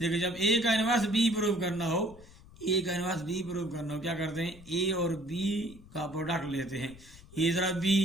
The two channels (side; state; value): left; noise; rumble, 21 dB below the sound